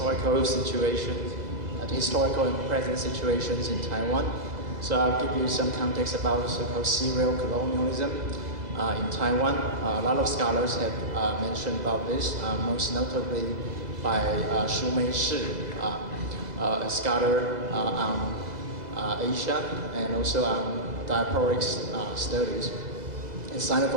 situations, the historical and present situations in Taiwan. So I'll give you some context about so-called serial colonialism in Taiwan. A lot of scholars have mentioned about this, most notably by Xu Meishi, a scholar on Asia and also on diasporic studies and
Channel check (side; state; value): left; late; 2.0 ms